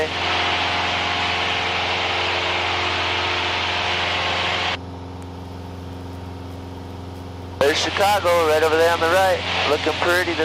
There's Chicago right over there on the right. Looking pretty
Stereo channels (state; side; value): identical; both; correlation 1.00